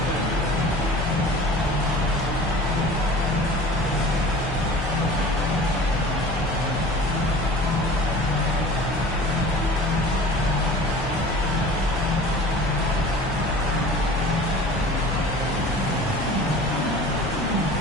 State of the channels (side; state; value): left; noise; hum, 11 dB below the sound